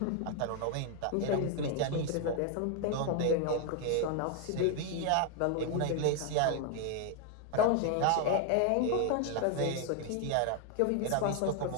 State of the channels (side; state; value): both; different; correlation 0.00